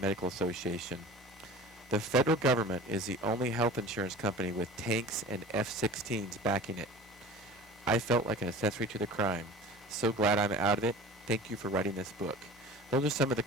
Medical Association. The federal government is the only health insurance company with tanks and F-16s backing it. I felt like an accessory to the crime. So glad I'm out of it. Thank you for writing this book. Those are some of the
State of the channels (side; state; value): both; normal; correlation 0.40